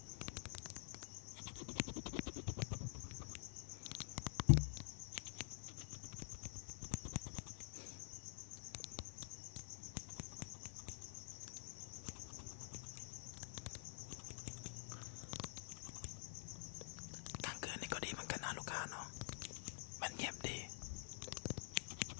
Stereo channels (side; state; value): right; silent; digital silence